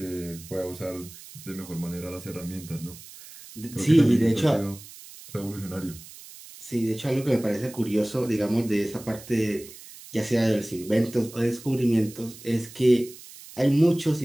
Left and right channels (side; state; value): right; noise; hiss, 17 dB below the sound